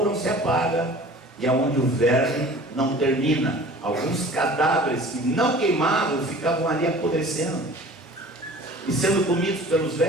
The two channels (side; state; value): both; normal; correlation 0.44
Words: não se apaga e é onde o verme não termina. Alguns cadáveres que não queimavam ficavam ali apodrecendo e sendo comidos pelos